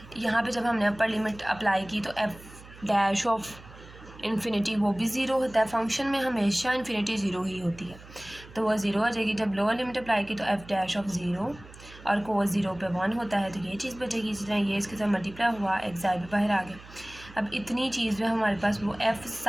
यहाँ पे जब हमने अपर लिमिट अप्लाई की तो एफ डैश ऑफ इन्फिनिटी वो भी ज़ीरो होता है। फंक्शन में हमेशा इन्फिनिटी ज़ीरो ही होती है, तो वो ज़ीरो हो जाएगी। जब लोअर लिमिट अप्लाई की तो एफ डैश ऑफ ज़ीरो और कोस ज़ीरो पे 1 होता है, तो ये चीज़ बचेगी। इसी तरह ये इसके साथ मल्टीप्लाई हुआ, एक्साई भी बाहर आ गया। अब इतनी चीज़ में हमारे पास वो F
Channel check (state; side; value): noise; right; hum, 19 dB below the sound